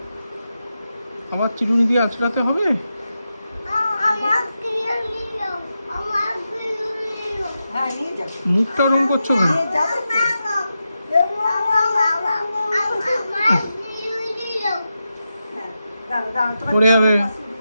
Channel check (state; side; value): inverted; both; correlation -0.89